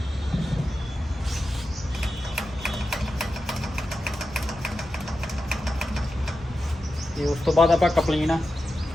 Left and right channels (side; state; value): both; normal; correlation 0.91